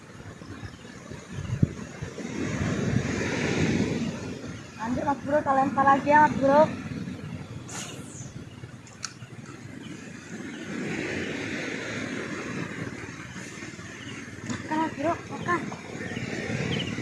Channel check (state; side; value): identical; both; correlation 1.00